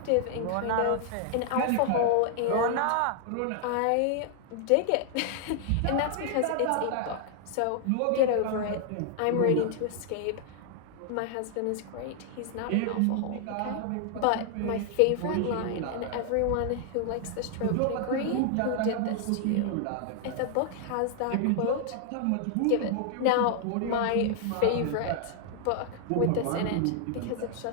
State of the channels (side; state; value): both; different; correlation 0.00